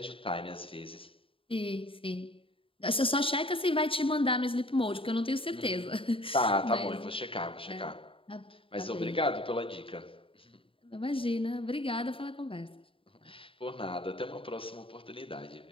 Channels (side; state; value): right; late; 0.26 ms